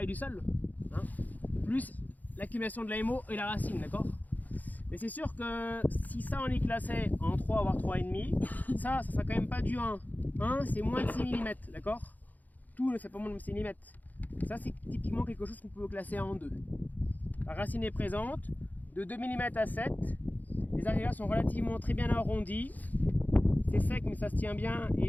du sol, hein, plus l'accumulation de la MO et la racine, d'accord? Mais c'est sûr que si ça on est classé en 3 voire 3,5, ça sera quand même pas du 1. 1 c'est moins de 6 mm, d'accord? Tout ne fait pas moins de 6 mm. Ça c'est typiquement quelque chose qu'on peut classer en 2. La racine est présente, de 2 mm à 7. Les agrégats sont relativement très bien arrondis. C'est sec mais ça se tient bien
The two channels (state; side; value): late; right; 0.081 ms